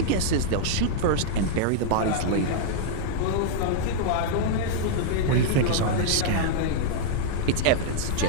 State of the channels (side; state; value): both; different; correlation -0.01